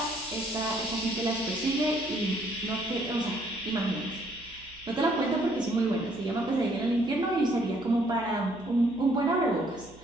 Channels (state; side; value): noise; right; hum, 23 dB below the sound